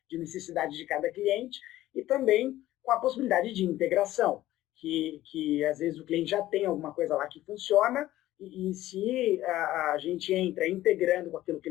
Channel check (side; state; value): right; quieter; 15.0 dB